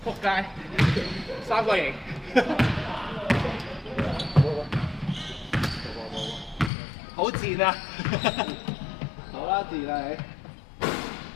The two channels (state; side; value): drops out; right; at 6.7 s